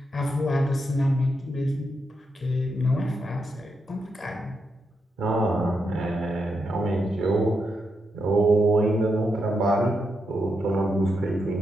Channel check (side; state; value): both; normal; correlation 0.83